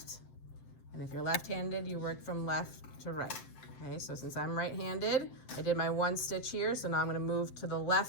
And if you're left-handed, you work from left to right. Okay, so since I'm right-handed, I did my 1 stitch here, so now I'm gonna move to the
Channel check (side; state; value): right; late; 7.7 ms